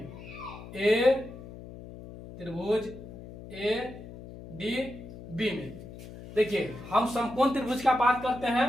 त्रिभुज ADB में। देखिए हम समकोण त्रिभुज का बात करते हैं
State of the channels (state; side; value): noise; left; hum, 14 dB below the sound